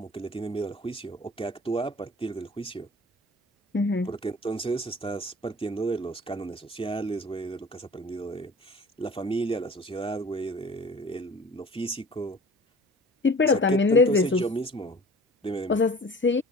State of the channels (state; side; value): normal; both; correlation 0.45